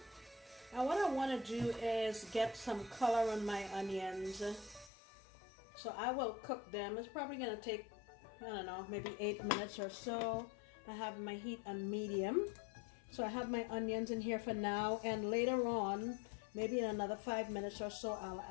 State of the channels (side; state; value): right; drops out; at 4.9 s